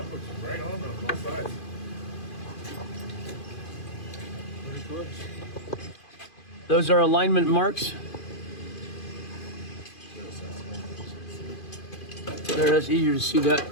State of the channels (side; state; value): right; late; 2.5 ms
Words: puts it right on both sides. Pretty close. Those are alignment marks. There, that's easier to see that